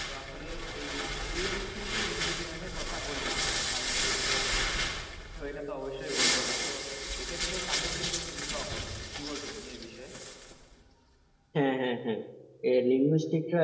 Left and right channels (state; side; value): identical; both; correlation 1.00